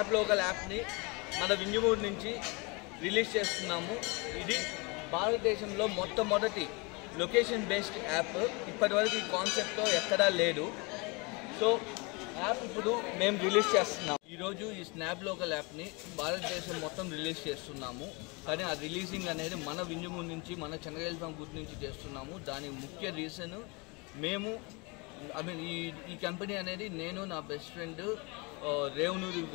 లోకల్ యాప్ని మన వింజమూరు నుంచి రిలీజ్ చేస్తున్నాము. ఇది భారతదేశంలో మొట్టమొదటి లొకేషన్ బేస్డ్ యాప్. ఇప్పటివరకు ఈ కాన్సెప్ట్తో ఎక్కడా లేదు. సో యాప్ ఇప్పుడు మేము రిలీజ్ చేస్తున్నాము. ఈరోజు ఈ స్నాప్ లోకల్ యాప్ని భారతదేశం మొత్తం రిలీజ్ చేస్తున్నాము. కానీ ఆ రిలీజింగ్ అనేది మన వింజమూరు నుంచి, మన చెన్నై గుర్తు నుంచి చేస్తున్నాము. దానికి ముఖ్య రీజన్ మేము ఈ కంపెనీ అనేది నేను, నా best friend Revanuri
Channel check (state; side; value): quieter; right; 28.8 dB